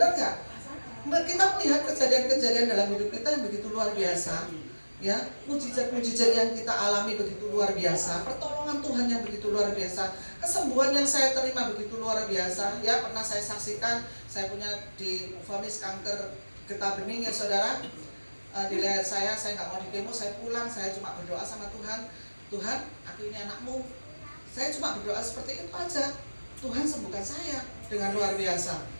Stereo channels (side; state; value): both; inverted; correlation -1.00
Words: nggak? Kita melihat kejadian-kejadian dalam hidup kita yang begitu luar biasa, ya, mujizat-mujizat yang kita alami begitu luar biasa, pertolongan Tuhan yang begitu luar biasa, kesembuhan yang saya terima begitu luar biasa, ya. Pernah saya saksikan, saya punya divonis kanker getah bening, ya saudara. Di leher saya nggak mau dikemo, saya pulang, saya cuma berdoa sama Tuhan, Tuhan, aku ini anakmu. Saya cuma berdoa seperti itu aja, Tuhan sembuhkan saya dengan luar biasa.